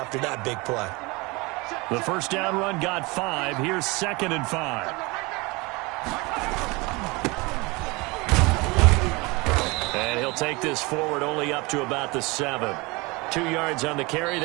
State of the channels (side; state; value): left; quieter; 25.2 dB